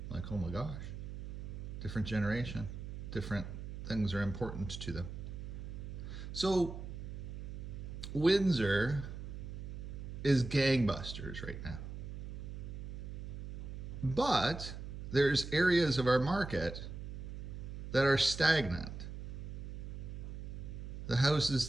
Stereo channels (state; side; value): noise; right; hum, 8 dB below the sound